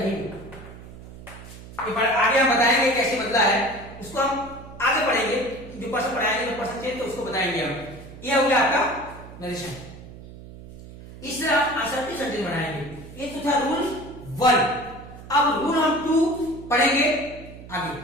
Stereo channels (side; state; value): right; noise; hum, 16 dB below the sound